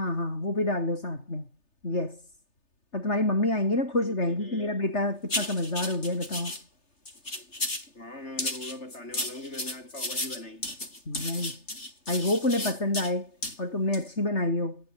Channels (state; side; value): late; right; 3.3 ms